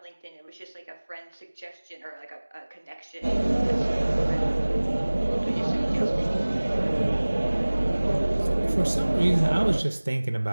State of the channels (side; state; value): both; inverted; correlation -1.00